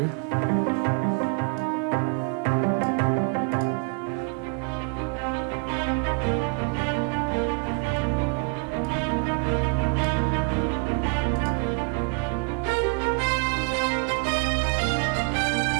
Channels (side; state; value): left; quieter; 37.9 dB